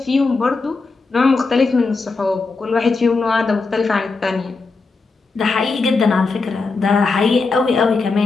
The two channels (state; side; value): quieter; right; 4.0 dB